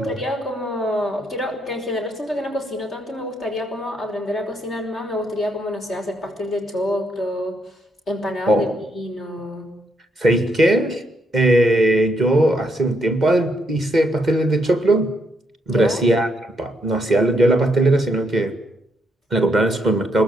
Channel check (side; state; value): both; normal; correlation 0.76